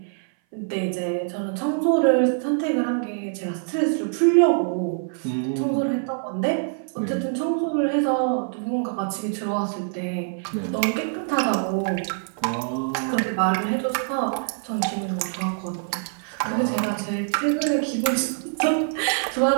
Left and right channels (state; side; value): silent; left; 57 dB below the other